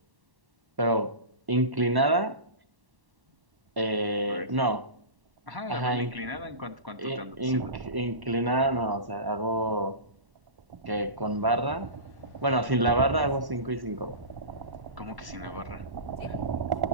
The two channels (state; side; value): late; left; 1.1 ms